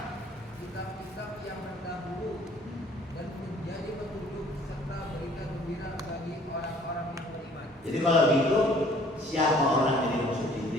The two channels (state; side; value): normal; both; correlation 0.56